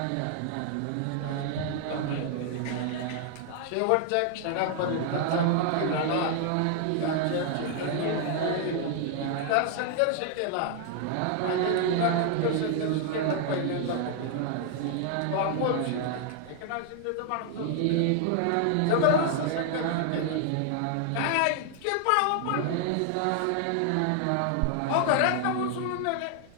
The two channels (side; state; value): both; different; correlation 0.00